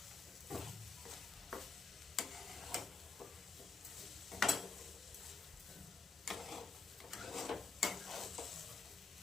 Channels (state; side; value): quieter; right; 4.5 dB